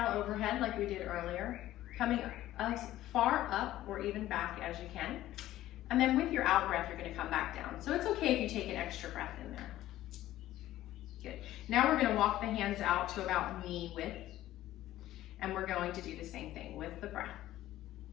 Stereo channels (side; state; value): right; quieter; 14.4 dB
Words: overhead like we did earlier, coming as far up or even back as you can. And then with your out breath, you're going to come back down. So it's okay if you take an extra breath in there. Good. Now we're going to walk the hands out to about knee width. And we're going to do the same thing with the breath.